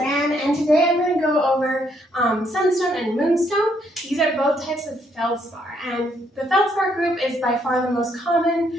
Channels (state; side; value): normal; both; correlation 0.72